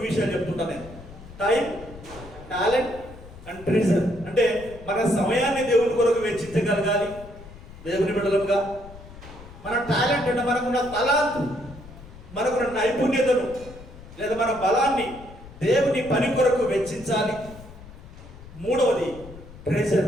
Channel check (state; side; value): noise; left; rumble, 17 dB below the sound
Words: విషయాలు చెప్తుంటాను నేను. Time, talent and treasure. అంటే మన సమయాన్ని దేవుని కొరకు వెచ్చించగలగాలి దేవుని బిడ్డలుగా. మన టాలెంట్ అంటే మనకున్న తలాంతు, మనకున్న నైపుణ్యతను లేదా మన బలాన్ని దేవుని పని కొరకు వెచ్చించాలి. మూడవది